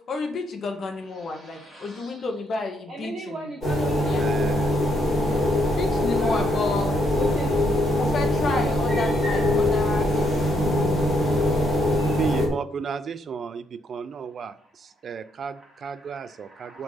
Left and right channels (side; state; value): both; normal; correlation 0.75